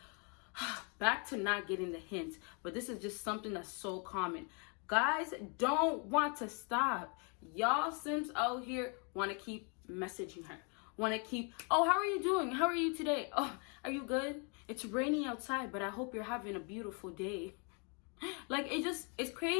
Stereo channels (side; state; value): right; quieter; 35.3 dB